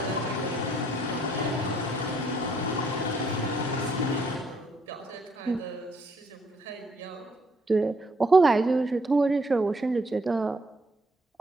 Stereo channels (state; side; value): normal; both; correlation 0.69